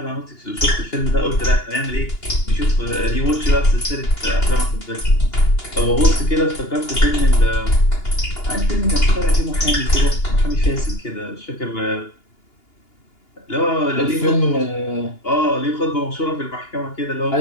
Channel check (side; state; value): right; late; 2.8 ms